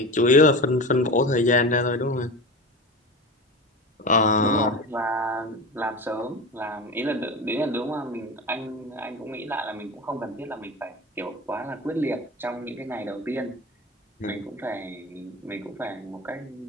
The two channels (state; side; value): normal; both; correlation 0.28